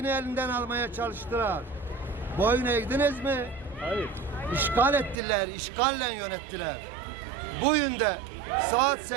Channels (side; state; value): left; drops out; at 5.2 s